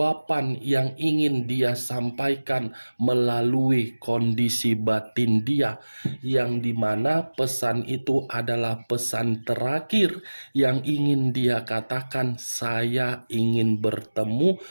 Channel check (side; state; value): both; inverted; correlation -1.00